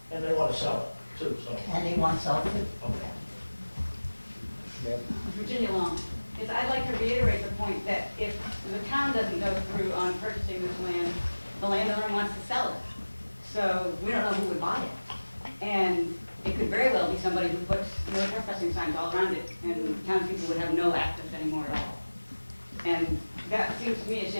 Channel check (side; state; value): both; inverted; correlation -1.00